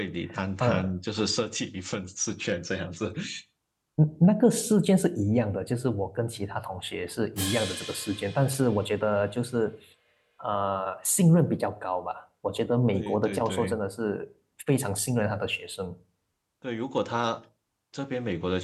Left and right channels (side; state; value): both; identical; correlation 1.00